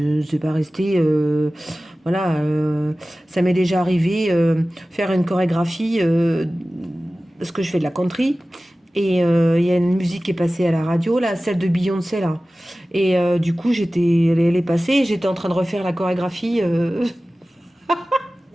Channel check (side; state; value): both; normal; correlation 0.97